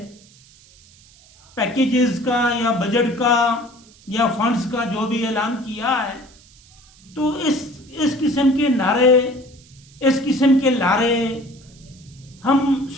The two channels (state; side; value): noise; right; hiss, 26 dB below the sound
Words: पैकेजेस का या बजट का या फंड्स का जो भी ऐलान किया है, तो इस किस्म के नारे, इस किस्म के लारे हम